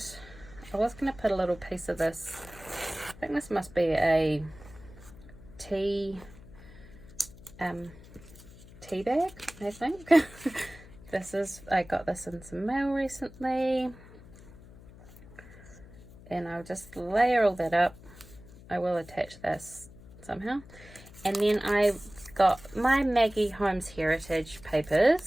I was going to put a little piece of this. I think this must be a tea bag, I think. I got this in some mail recently. And I'll just layer all that up. I will attach this somehow. And then I got my Maggie Holmes Heritage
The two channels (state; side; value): noise; left; hum, 19 dB below the sound